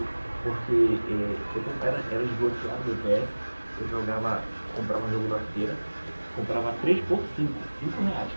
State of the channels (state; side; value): inverted; both; correlation -1.00